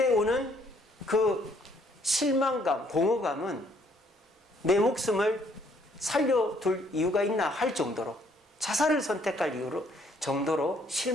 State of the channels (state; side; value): normal; both; correlation 0.65